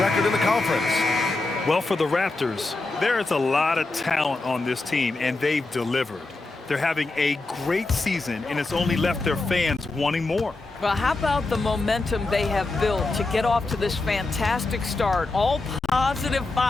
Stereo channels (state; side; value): quieter; right; 3.3 dB